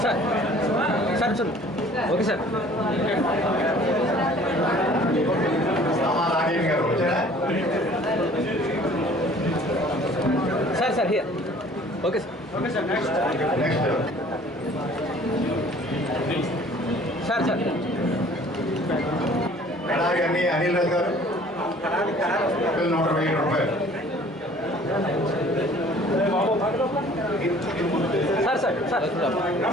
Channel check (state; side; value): normal; both; correlation 0.52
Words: sir sir sir okay sir Rajesh గారు వచ్చారా? Sir sir here okay sir okay sir next sir sir Kadari Anil Raju గారు ₹120,000. Sir sir sir